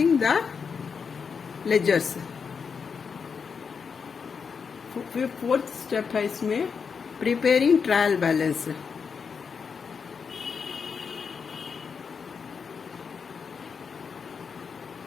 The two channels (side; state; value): right; quieter; 5.9 dB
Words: the ledgers. Fourth step है इसमें preparing trial balance.